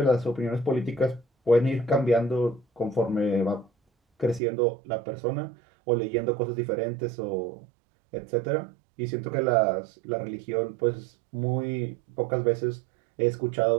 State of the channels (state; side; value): drops out; left; at 4.4 s